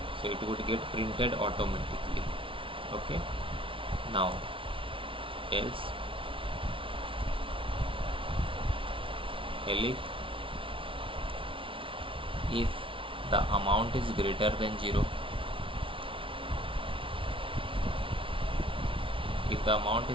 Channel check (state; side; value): late; left; 0.25 ms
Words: so it would get printed automatically. Okay, now else if the amount is greater than 0, if the amount